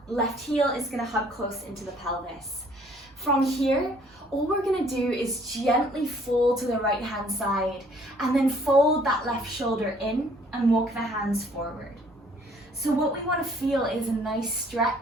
left heel is going to hug close into the pelvis. From here, all we're going to do is gently fold to the right hand side, and then fold that left shoulder in and walk the hands forward. So what we want to feel is a nice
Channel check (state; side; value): normal; both; correlation 0.60